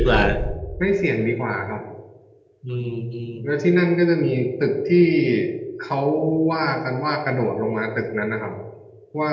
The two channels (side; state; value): both; identical; correlation 1.00